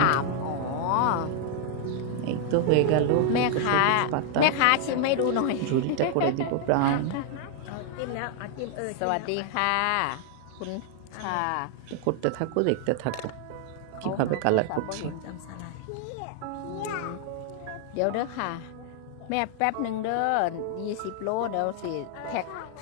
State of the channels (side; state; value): both; different; correlation 0.00